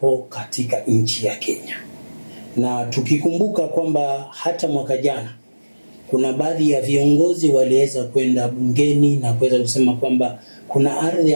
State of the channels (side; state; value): both; inverted; correlation -1.00